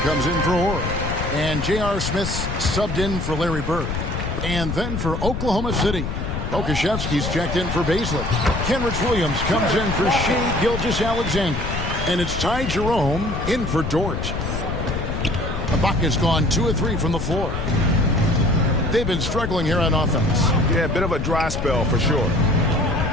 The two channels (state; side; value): noise; left; rumble, 4 dB below the sound